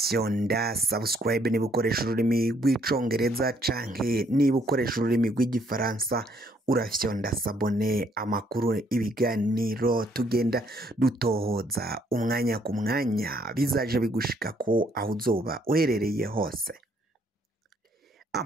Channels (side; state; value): both; normal; correlation 0.67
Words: subscribe niba ukoresha ururimi rw'icongereza canke niba ukoresha ururimi rw'igifaransa, urafyonda sabone, amakuru ibiganiro tugenda dutohoza umwanya ku mwanya bizaje bigushika ko aho uzoba uherereye hose.